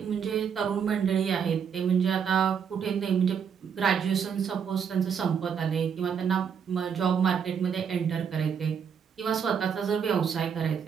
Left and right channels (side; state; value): left; quieter; 7.2 dB